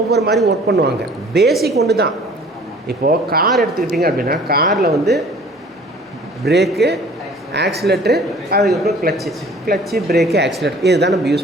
மாதிரி ஒர்க் பண்ணுவாங்க. பேசிக் ஒன்று தான். இப்போது கார் எடுத்துக்கிட்டிங்க அப்படின்னா, காரில் வந்து பிரேக்கு, ஆக்சிலேட்ரு, அதுக்கப்புறம் கிளச்சு, பிரேக்கு, ஆக்சிலேட்டர், இது தான் நம்ம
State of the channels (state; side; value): normal; both; correlation 0.50